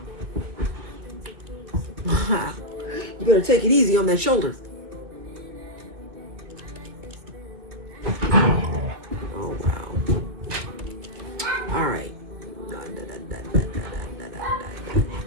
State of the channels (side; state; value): left; late; 2.2 ms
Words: You better take it easy on that shoulder. Oh, wow. All right.